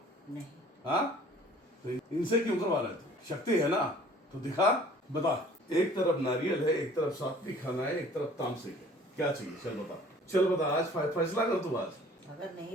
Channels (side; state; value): both; normal; correlation 0.52